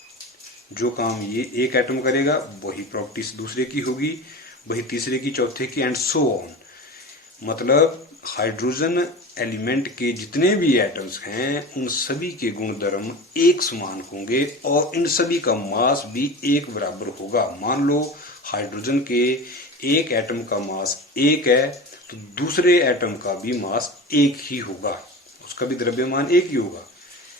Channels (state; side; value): normal; both; correlation 0.31